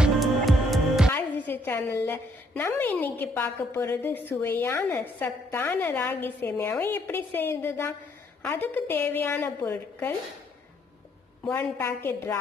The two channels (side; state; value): both; normal; correlation 0.68